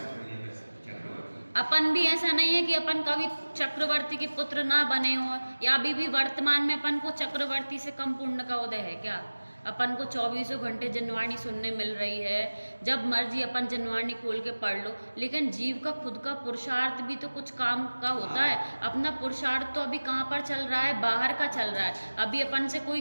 अपन भी ऐसा नहीं है कि अपन कभी चक्रवर्ती के पुत्र ना बने हो, या अभी भी वर्तमान में अपन को चक्रवर्ती से कम पुण्य का उदय है क्या? अपन को 24 घंटे जनवाणी सुनने मिल रही है, जब मर्जी अपन जनवाणी खोल के पढ़ लो, लेकिन जीव का खुद का पुरुषार्थ भी तो कुछ काम का होता है। अपना पुरुषार्थ तो अभी कहाँ पर चल रहा है, बाहर का चल रहा है। अभी अपन से कोई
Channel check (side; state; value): both; inverted; correlation -1.00